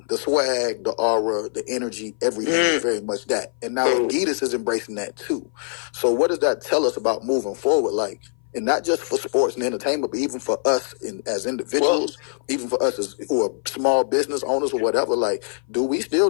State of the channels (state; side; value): silent; right; 58 dB below the other